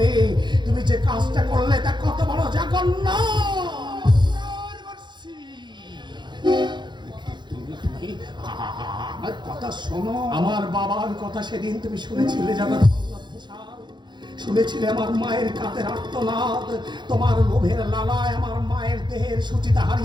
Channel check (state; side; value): late; left; 0.22 ms